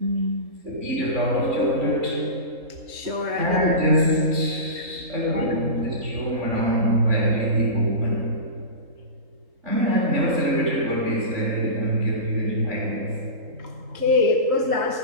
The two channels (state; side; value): late; left; 3.8 ms